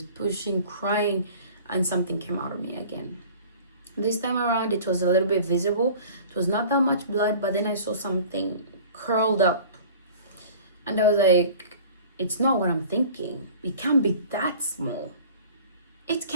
pushing, crying, and something came out of me again. This time around, it was a little bit visible. It was not that much blood, but then I saw something curled up. And I was like, it's not what I'm thinking. It can't be that small. It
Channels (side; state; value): both; inverted; correlation -0.44